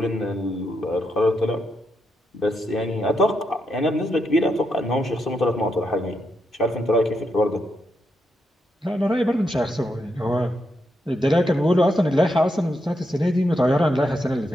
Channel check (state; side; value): normal; both; correlation 0.82